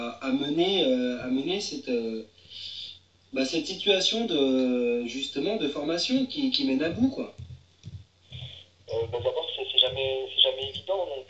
mener cette situation justement de formation qui mène à bout, quoi? D'abord, c'est jamais évident, donc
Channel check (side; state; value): both; identical; correlation 1.00